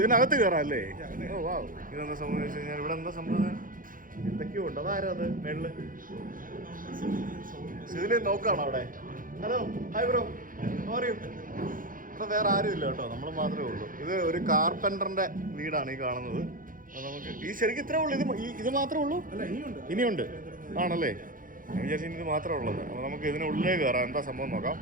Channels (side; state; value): left; late; 0.40 ms